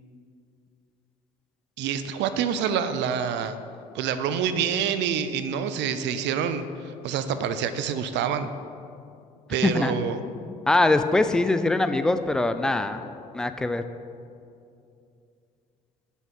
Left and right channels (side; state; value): both; normal; correlation 0.55